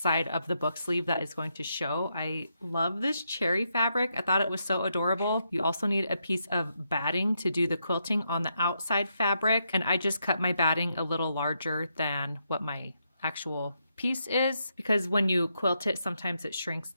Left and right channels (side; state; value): both; inverted; correlation -0.80